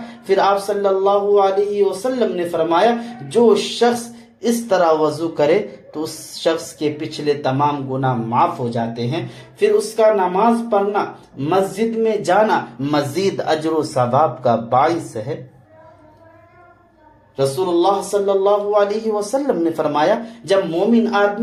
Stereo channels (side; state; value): both; identical; correlation 1.00